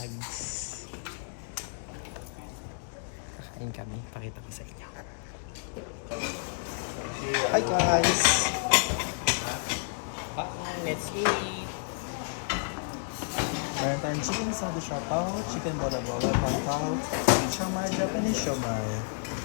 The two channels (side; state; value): right; silent; digital silence